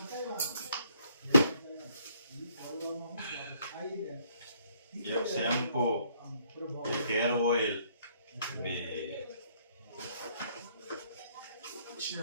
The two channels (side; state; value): both; inverted; correlation -0.66